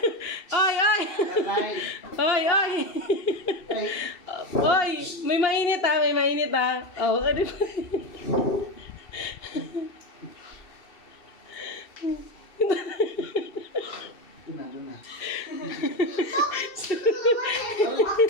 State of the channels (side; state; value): right; late; 2.7 ms